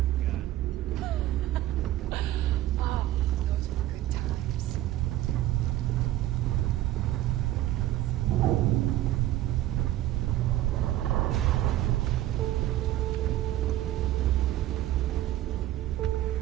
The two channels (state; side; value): quieter; left; 14.4 dB